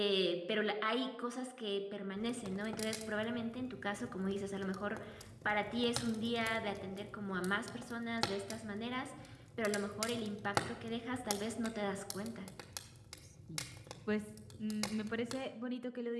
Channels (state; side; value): identical; both; correlation 1.00